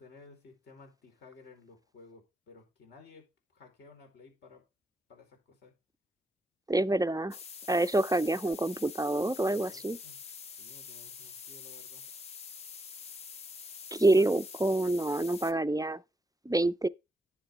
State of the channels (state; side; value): normal; both; correlation 0.80